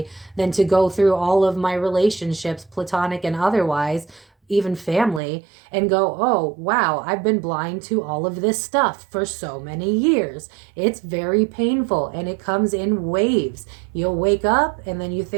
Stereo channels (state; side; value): drops out; left; at 5.2 s